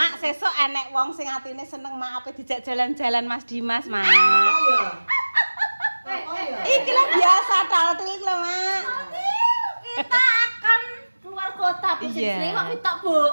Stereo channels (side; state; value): both; inverted; correlation -1.00